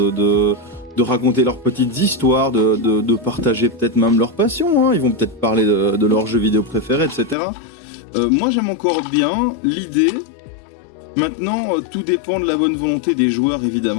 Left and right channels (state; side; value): drops out; right; at 7.4 s